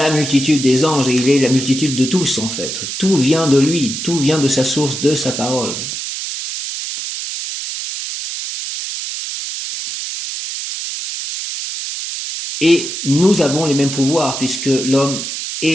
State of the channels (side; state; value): right; noise; hiss, 6 dB below the sound